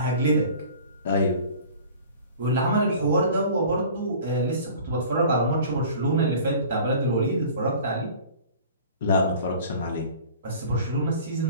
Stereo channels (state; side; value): inverted; both; correlation -0.44